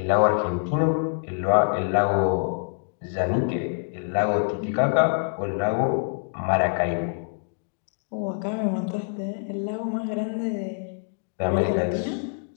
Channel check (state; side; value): silent; right; digital silence